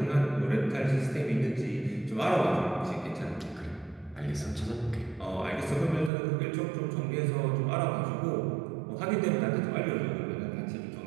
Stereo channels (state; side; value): drops out; left; at 6.1 s